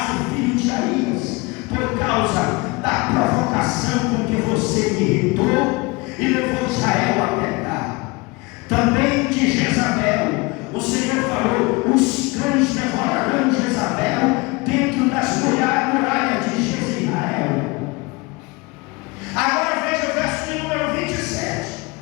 filho de Aías, por causa da provocação com que você me irritou e levou Israel a pecar. Também de Jezabel, o Senhor falou: os cães devorarão Jezabel dentro das muralhas de Jezreel. Agora veja o verso de número 27.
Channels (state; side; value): quieter; right; 25.3 dB